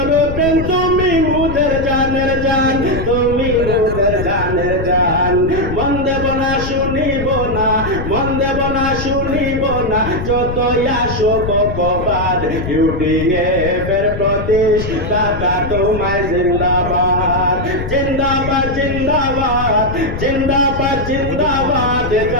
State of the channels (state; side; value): noise; left; rumble, 6 dB below the sound